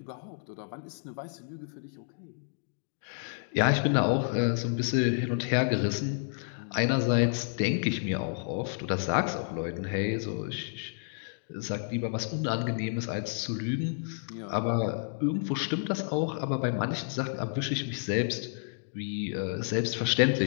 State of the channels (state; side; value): silent; right; digital silence